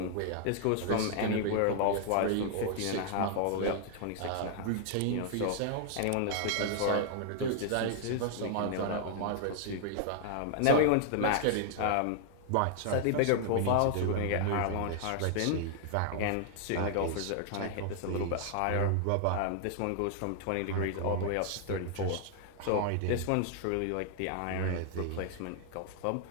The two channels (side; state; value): both; different; correlation 0.00